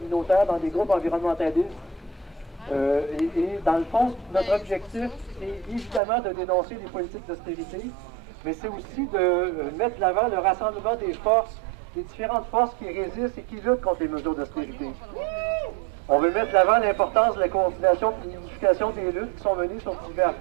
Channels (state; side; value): drops out; left; at 6.0 s